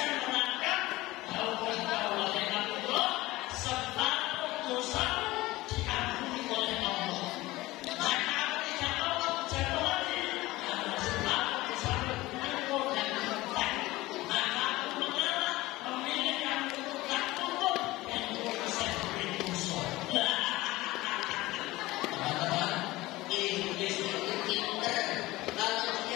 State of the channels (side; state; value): right; quieter; 19.0 dB